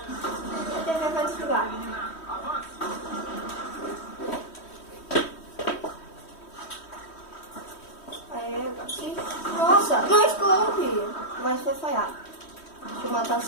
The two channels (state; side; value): late; right; 3.1 ms